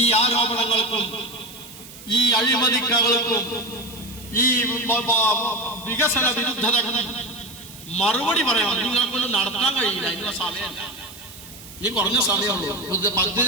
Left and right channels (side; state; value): right; noise; hiss, 17 dB below the sound